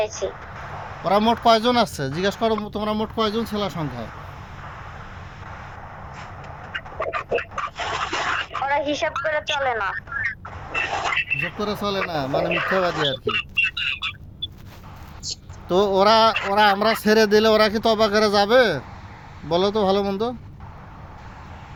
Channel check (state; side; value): identical; both; correlation 1.00